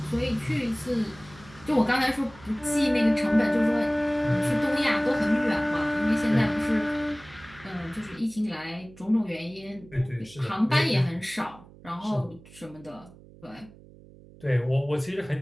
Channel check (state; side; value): noise; right; hum, 22 dB below the sound